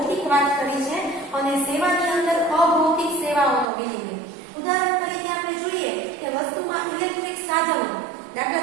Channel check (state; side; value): drops out; left; at 3.7 s